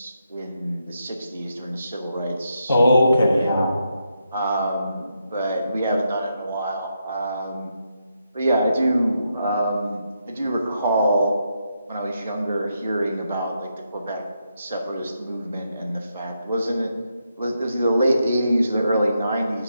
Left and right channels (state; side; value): inverted; both; correlation -0.82